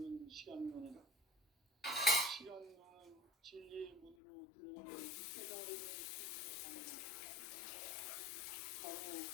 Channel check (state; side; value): drops out; right; at 4.2 s